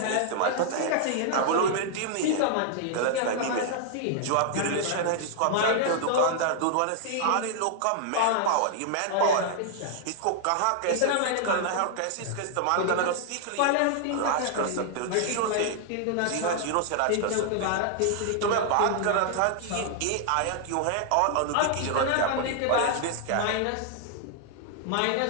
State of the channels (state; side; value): different; both; correlation -0.01